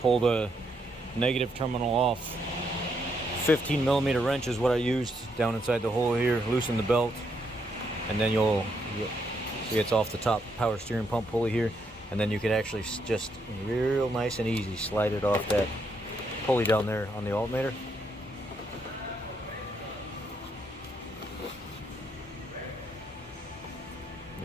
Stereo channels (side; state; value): both; normal; correlation 0.76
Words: pull the negative terminal off. 15mm wrench is what I used down inside the hole here. Loosen the belt, and then you'll see it's off the top power steering pump pulley here, and then you can actually just real nice and easy slide it off that pulley down there on the alternator.